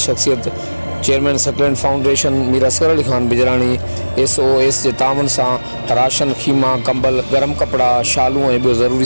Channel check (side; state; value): both; inverted; correlation -1.00